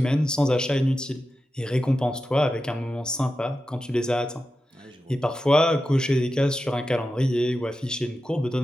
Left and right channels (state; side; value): normal; both; correlation 0.91